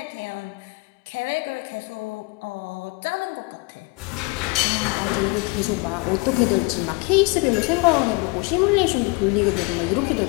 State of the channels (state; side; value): quieter; right; 27.2 dB